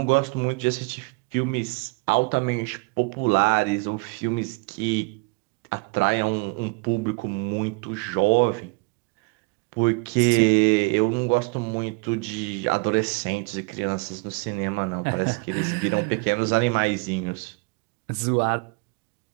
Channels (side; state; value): left; quieter; 27.9 dB